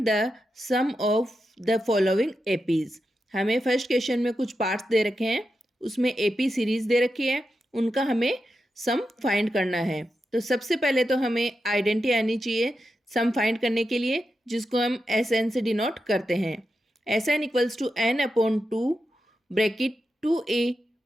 the sum of the following APs. हमें फर्स्ट क्वेश्चन में कुछ पार्ट्स दे रखे हैं, उसमें एपी सीरीज दे रखी है, उनका हमें सम फाइंड करना है। तो सबसे पहले तो हमें आइडेंटिटी आनी चाहिए सम फाइंड करने के लिए, जिसको हम एस एन से डिनोट करते हैं। Sn equals to n upon 2 bracket 2a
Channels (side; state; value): both; normal; correlation 0.88